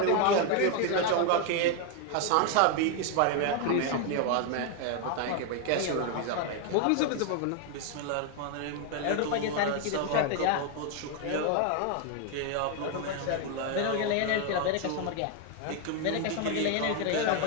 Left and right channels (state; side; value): different; both; correlation 0.01